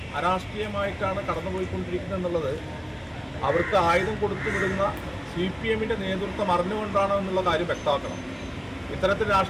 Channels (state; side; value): identical; both; correlation 1.00